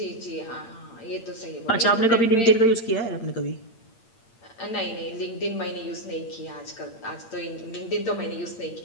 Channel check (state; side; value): late; right; 8.7 ms